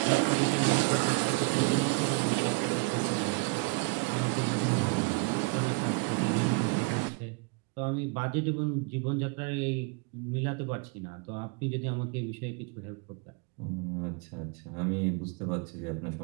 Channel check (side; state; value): left; quieter; 28.3 dB